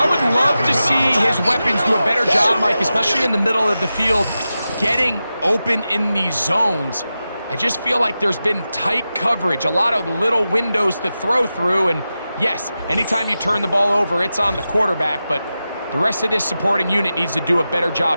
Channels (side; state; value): both; inverted; correlation -0.92